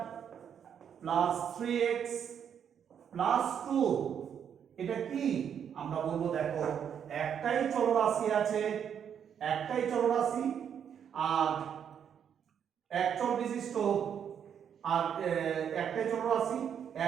প্লাস 3x প্লাস 2, এটা কি আমরা বলবো, দেখো একটাই চলরাশি আছে, একটাই চলরাশি, আর একচল বিশিষ্ট, আর একটাই চলরাশি,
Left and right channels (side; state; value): left; quieter; 8.2 dB